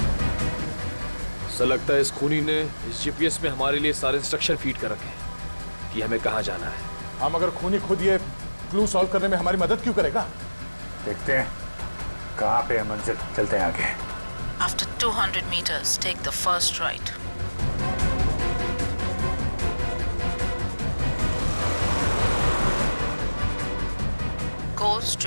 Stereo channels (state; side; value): inverted; both; correlation -1.00